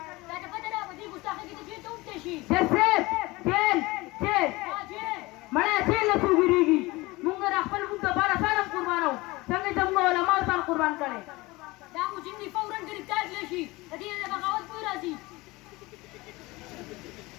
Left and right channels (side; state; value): right; quieter; 21.8 dB